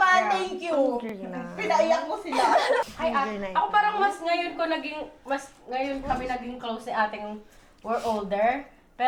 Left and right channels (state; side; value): identical; both; correlation 1.00